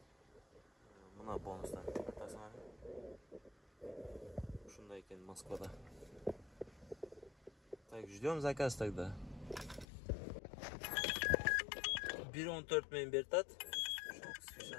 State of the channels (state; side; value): drops out; right; at 9.9 s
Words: Buna bonuslar tasmani. Shunday ekan Moskvada. Так, ждем заказ тогда. 1.14 men bertat.